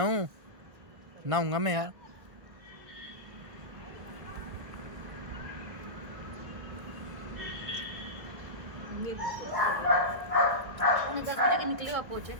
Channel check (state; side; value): late; left; 1.4 ms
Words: हूँ, नहाऊंगा मैं यार। निकले आप पहुंचे।